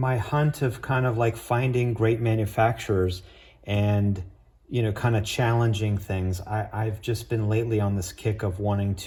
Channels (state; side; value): identical; both; correlation 1.00